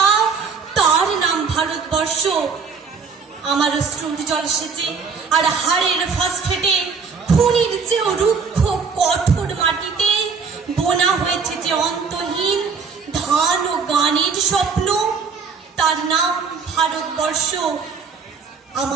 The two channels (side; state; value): left; quieter; 5.4 dB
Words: তার নাম ভারতবর্ষ। আমার অশ্রুর জল সেচে আর হাড়ের ফসফেটে খুনির চেয়েও রুক্ষ কঠোর মাটিতে বোনা হয়েছে যে অন্তহীন ধান ও গানের স্বপ্ন, তার নাম ভারতবর্ষ।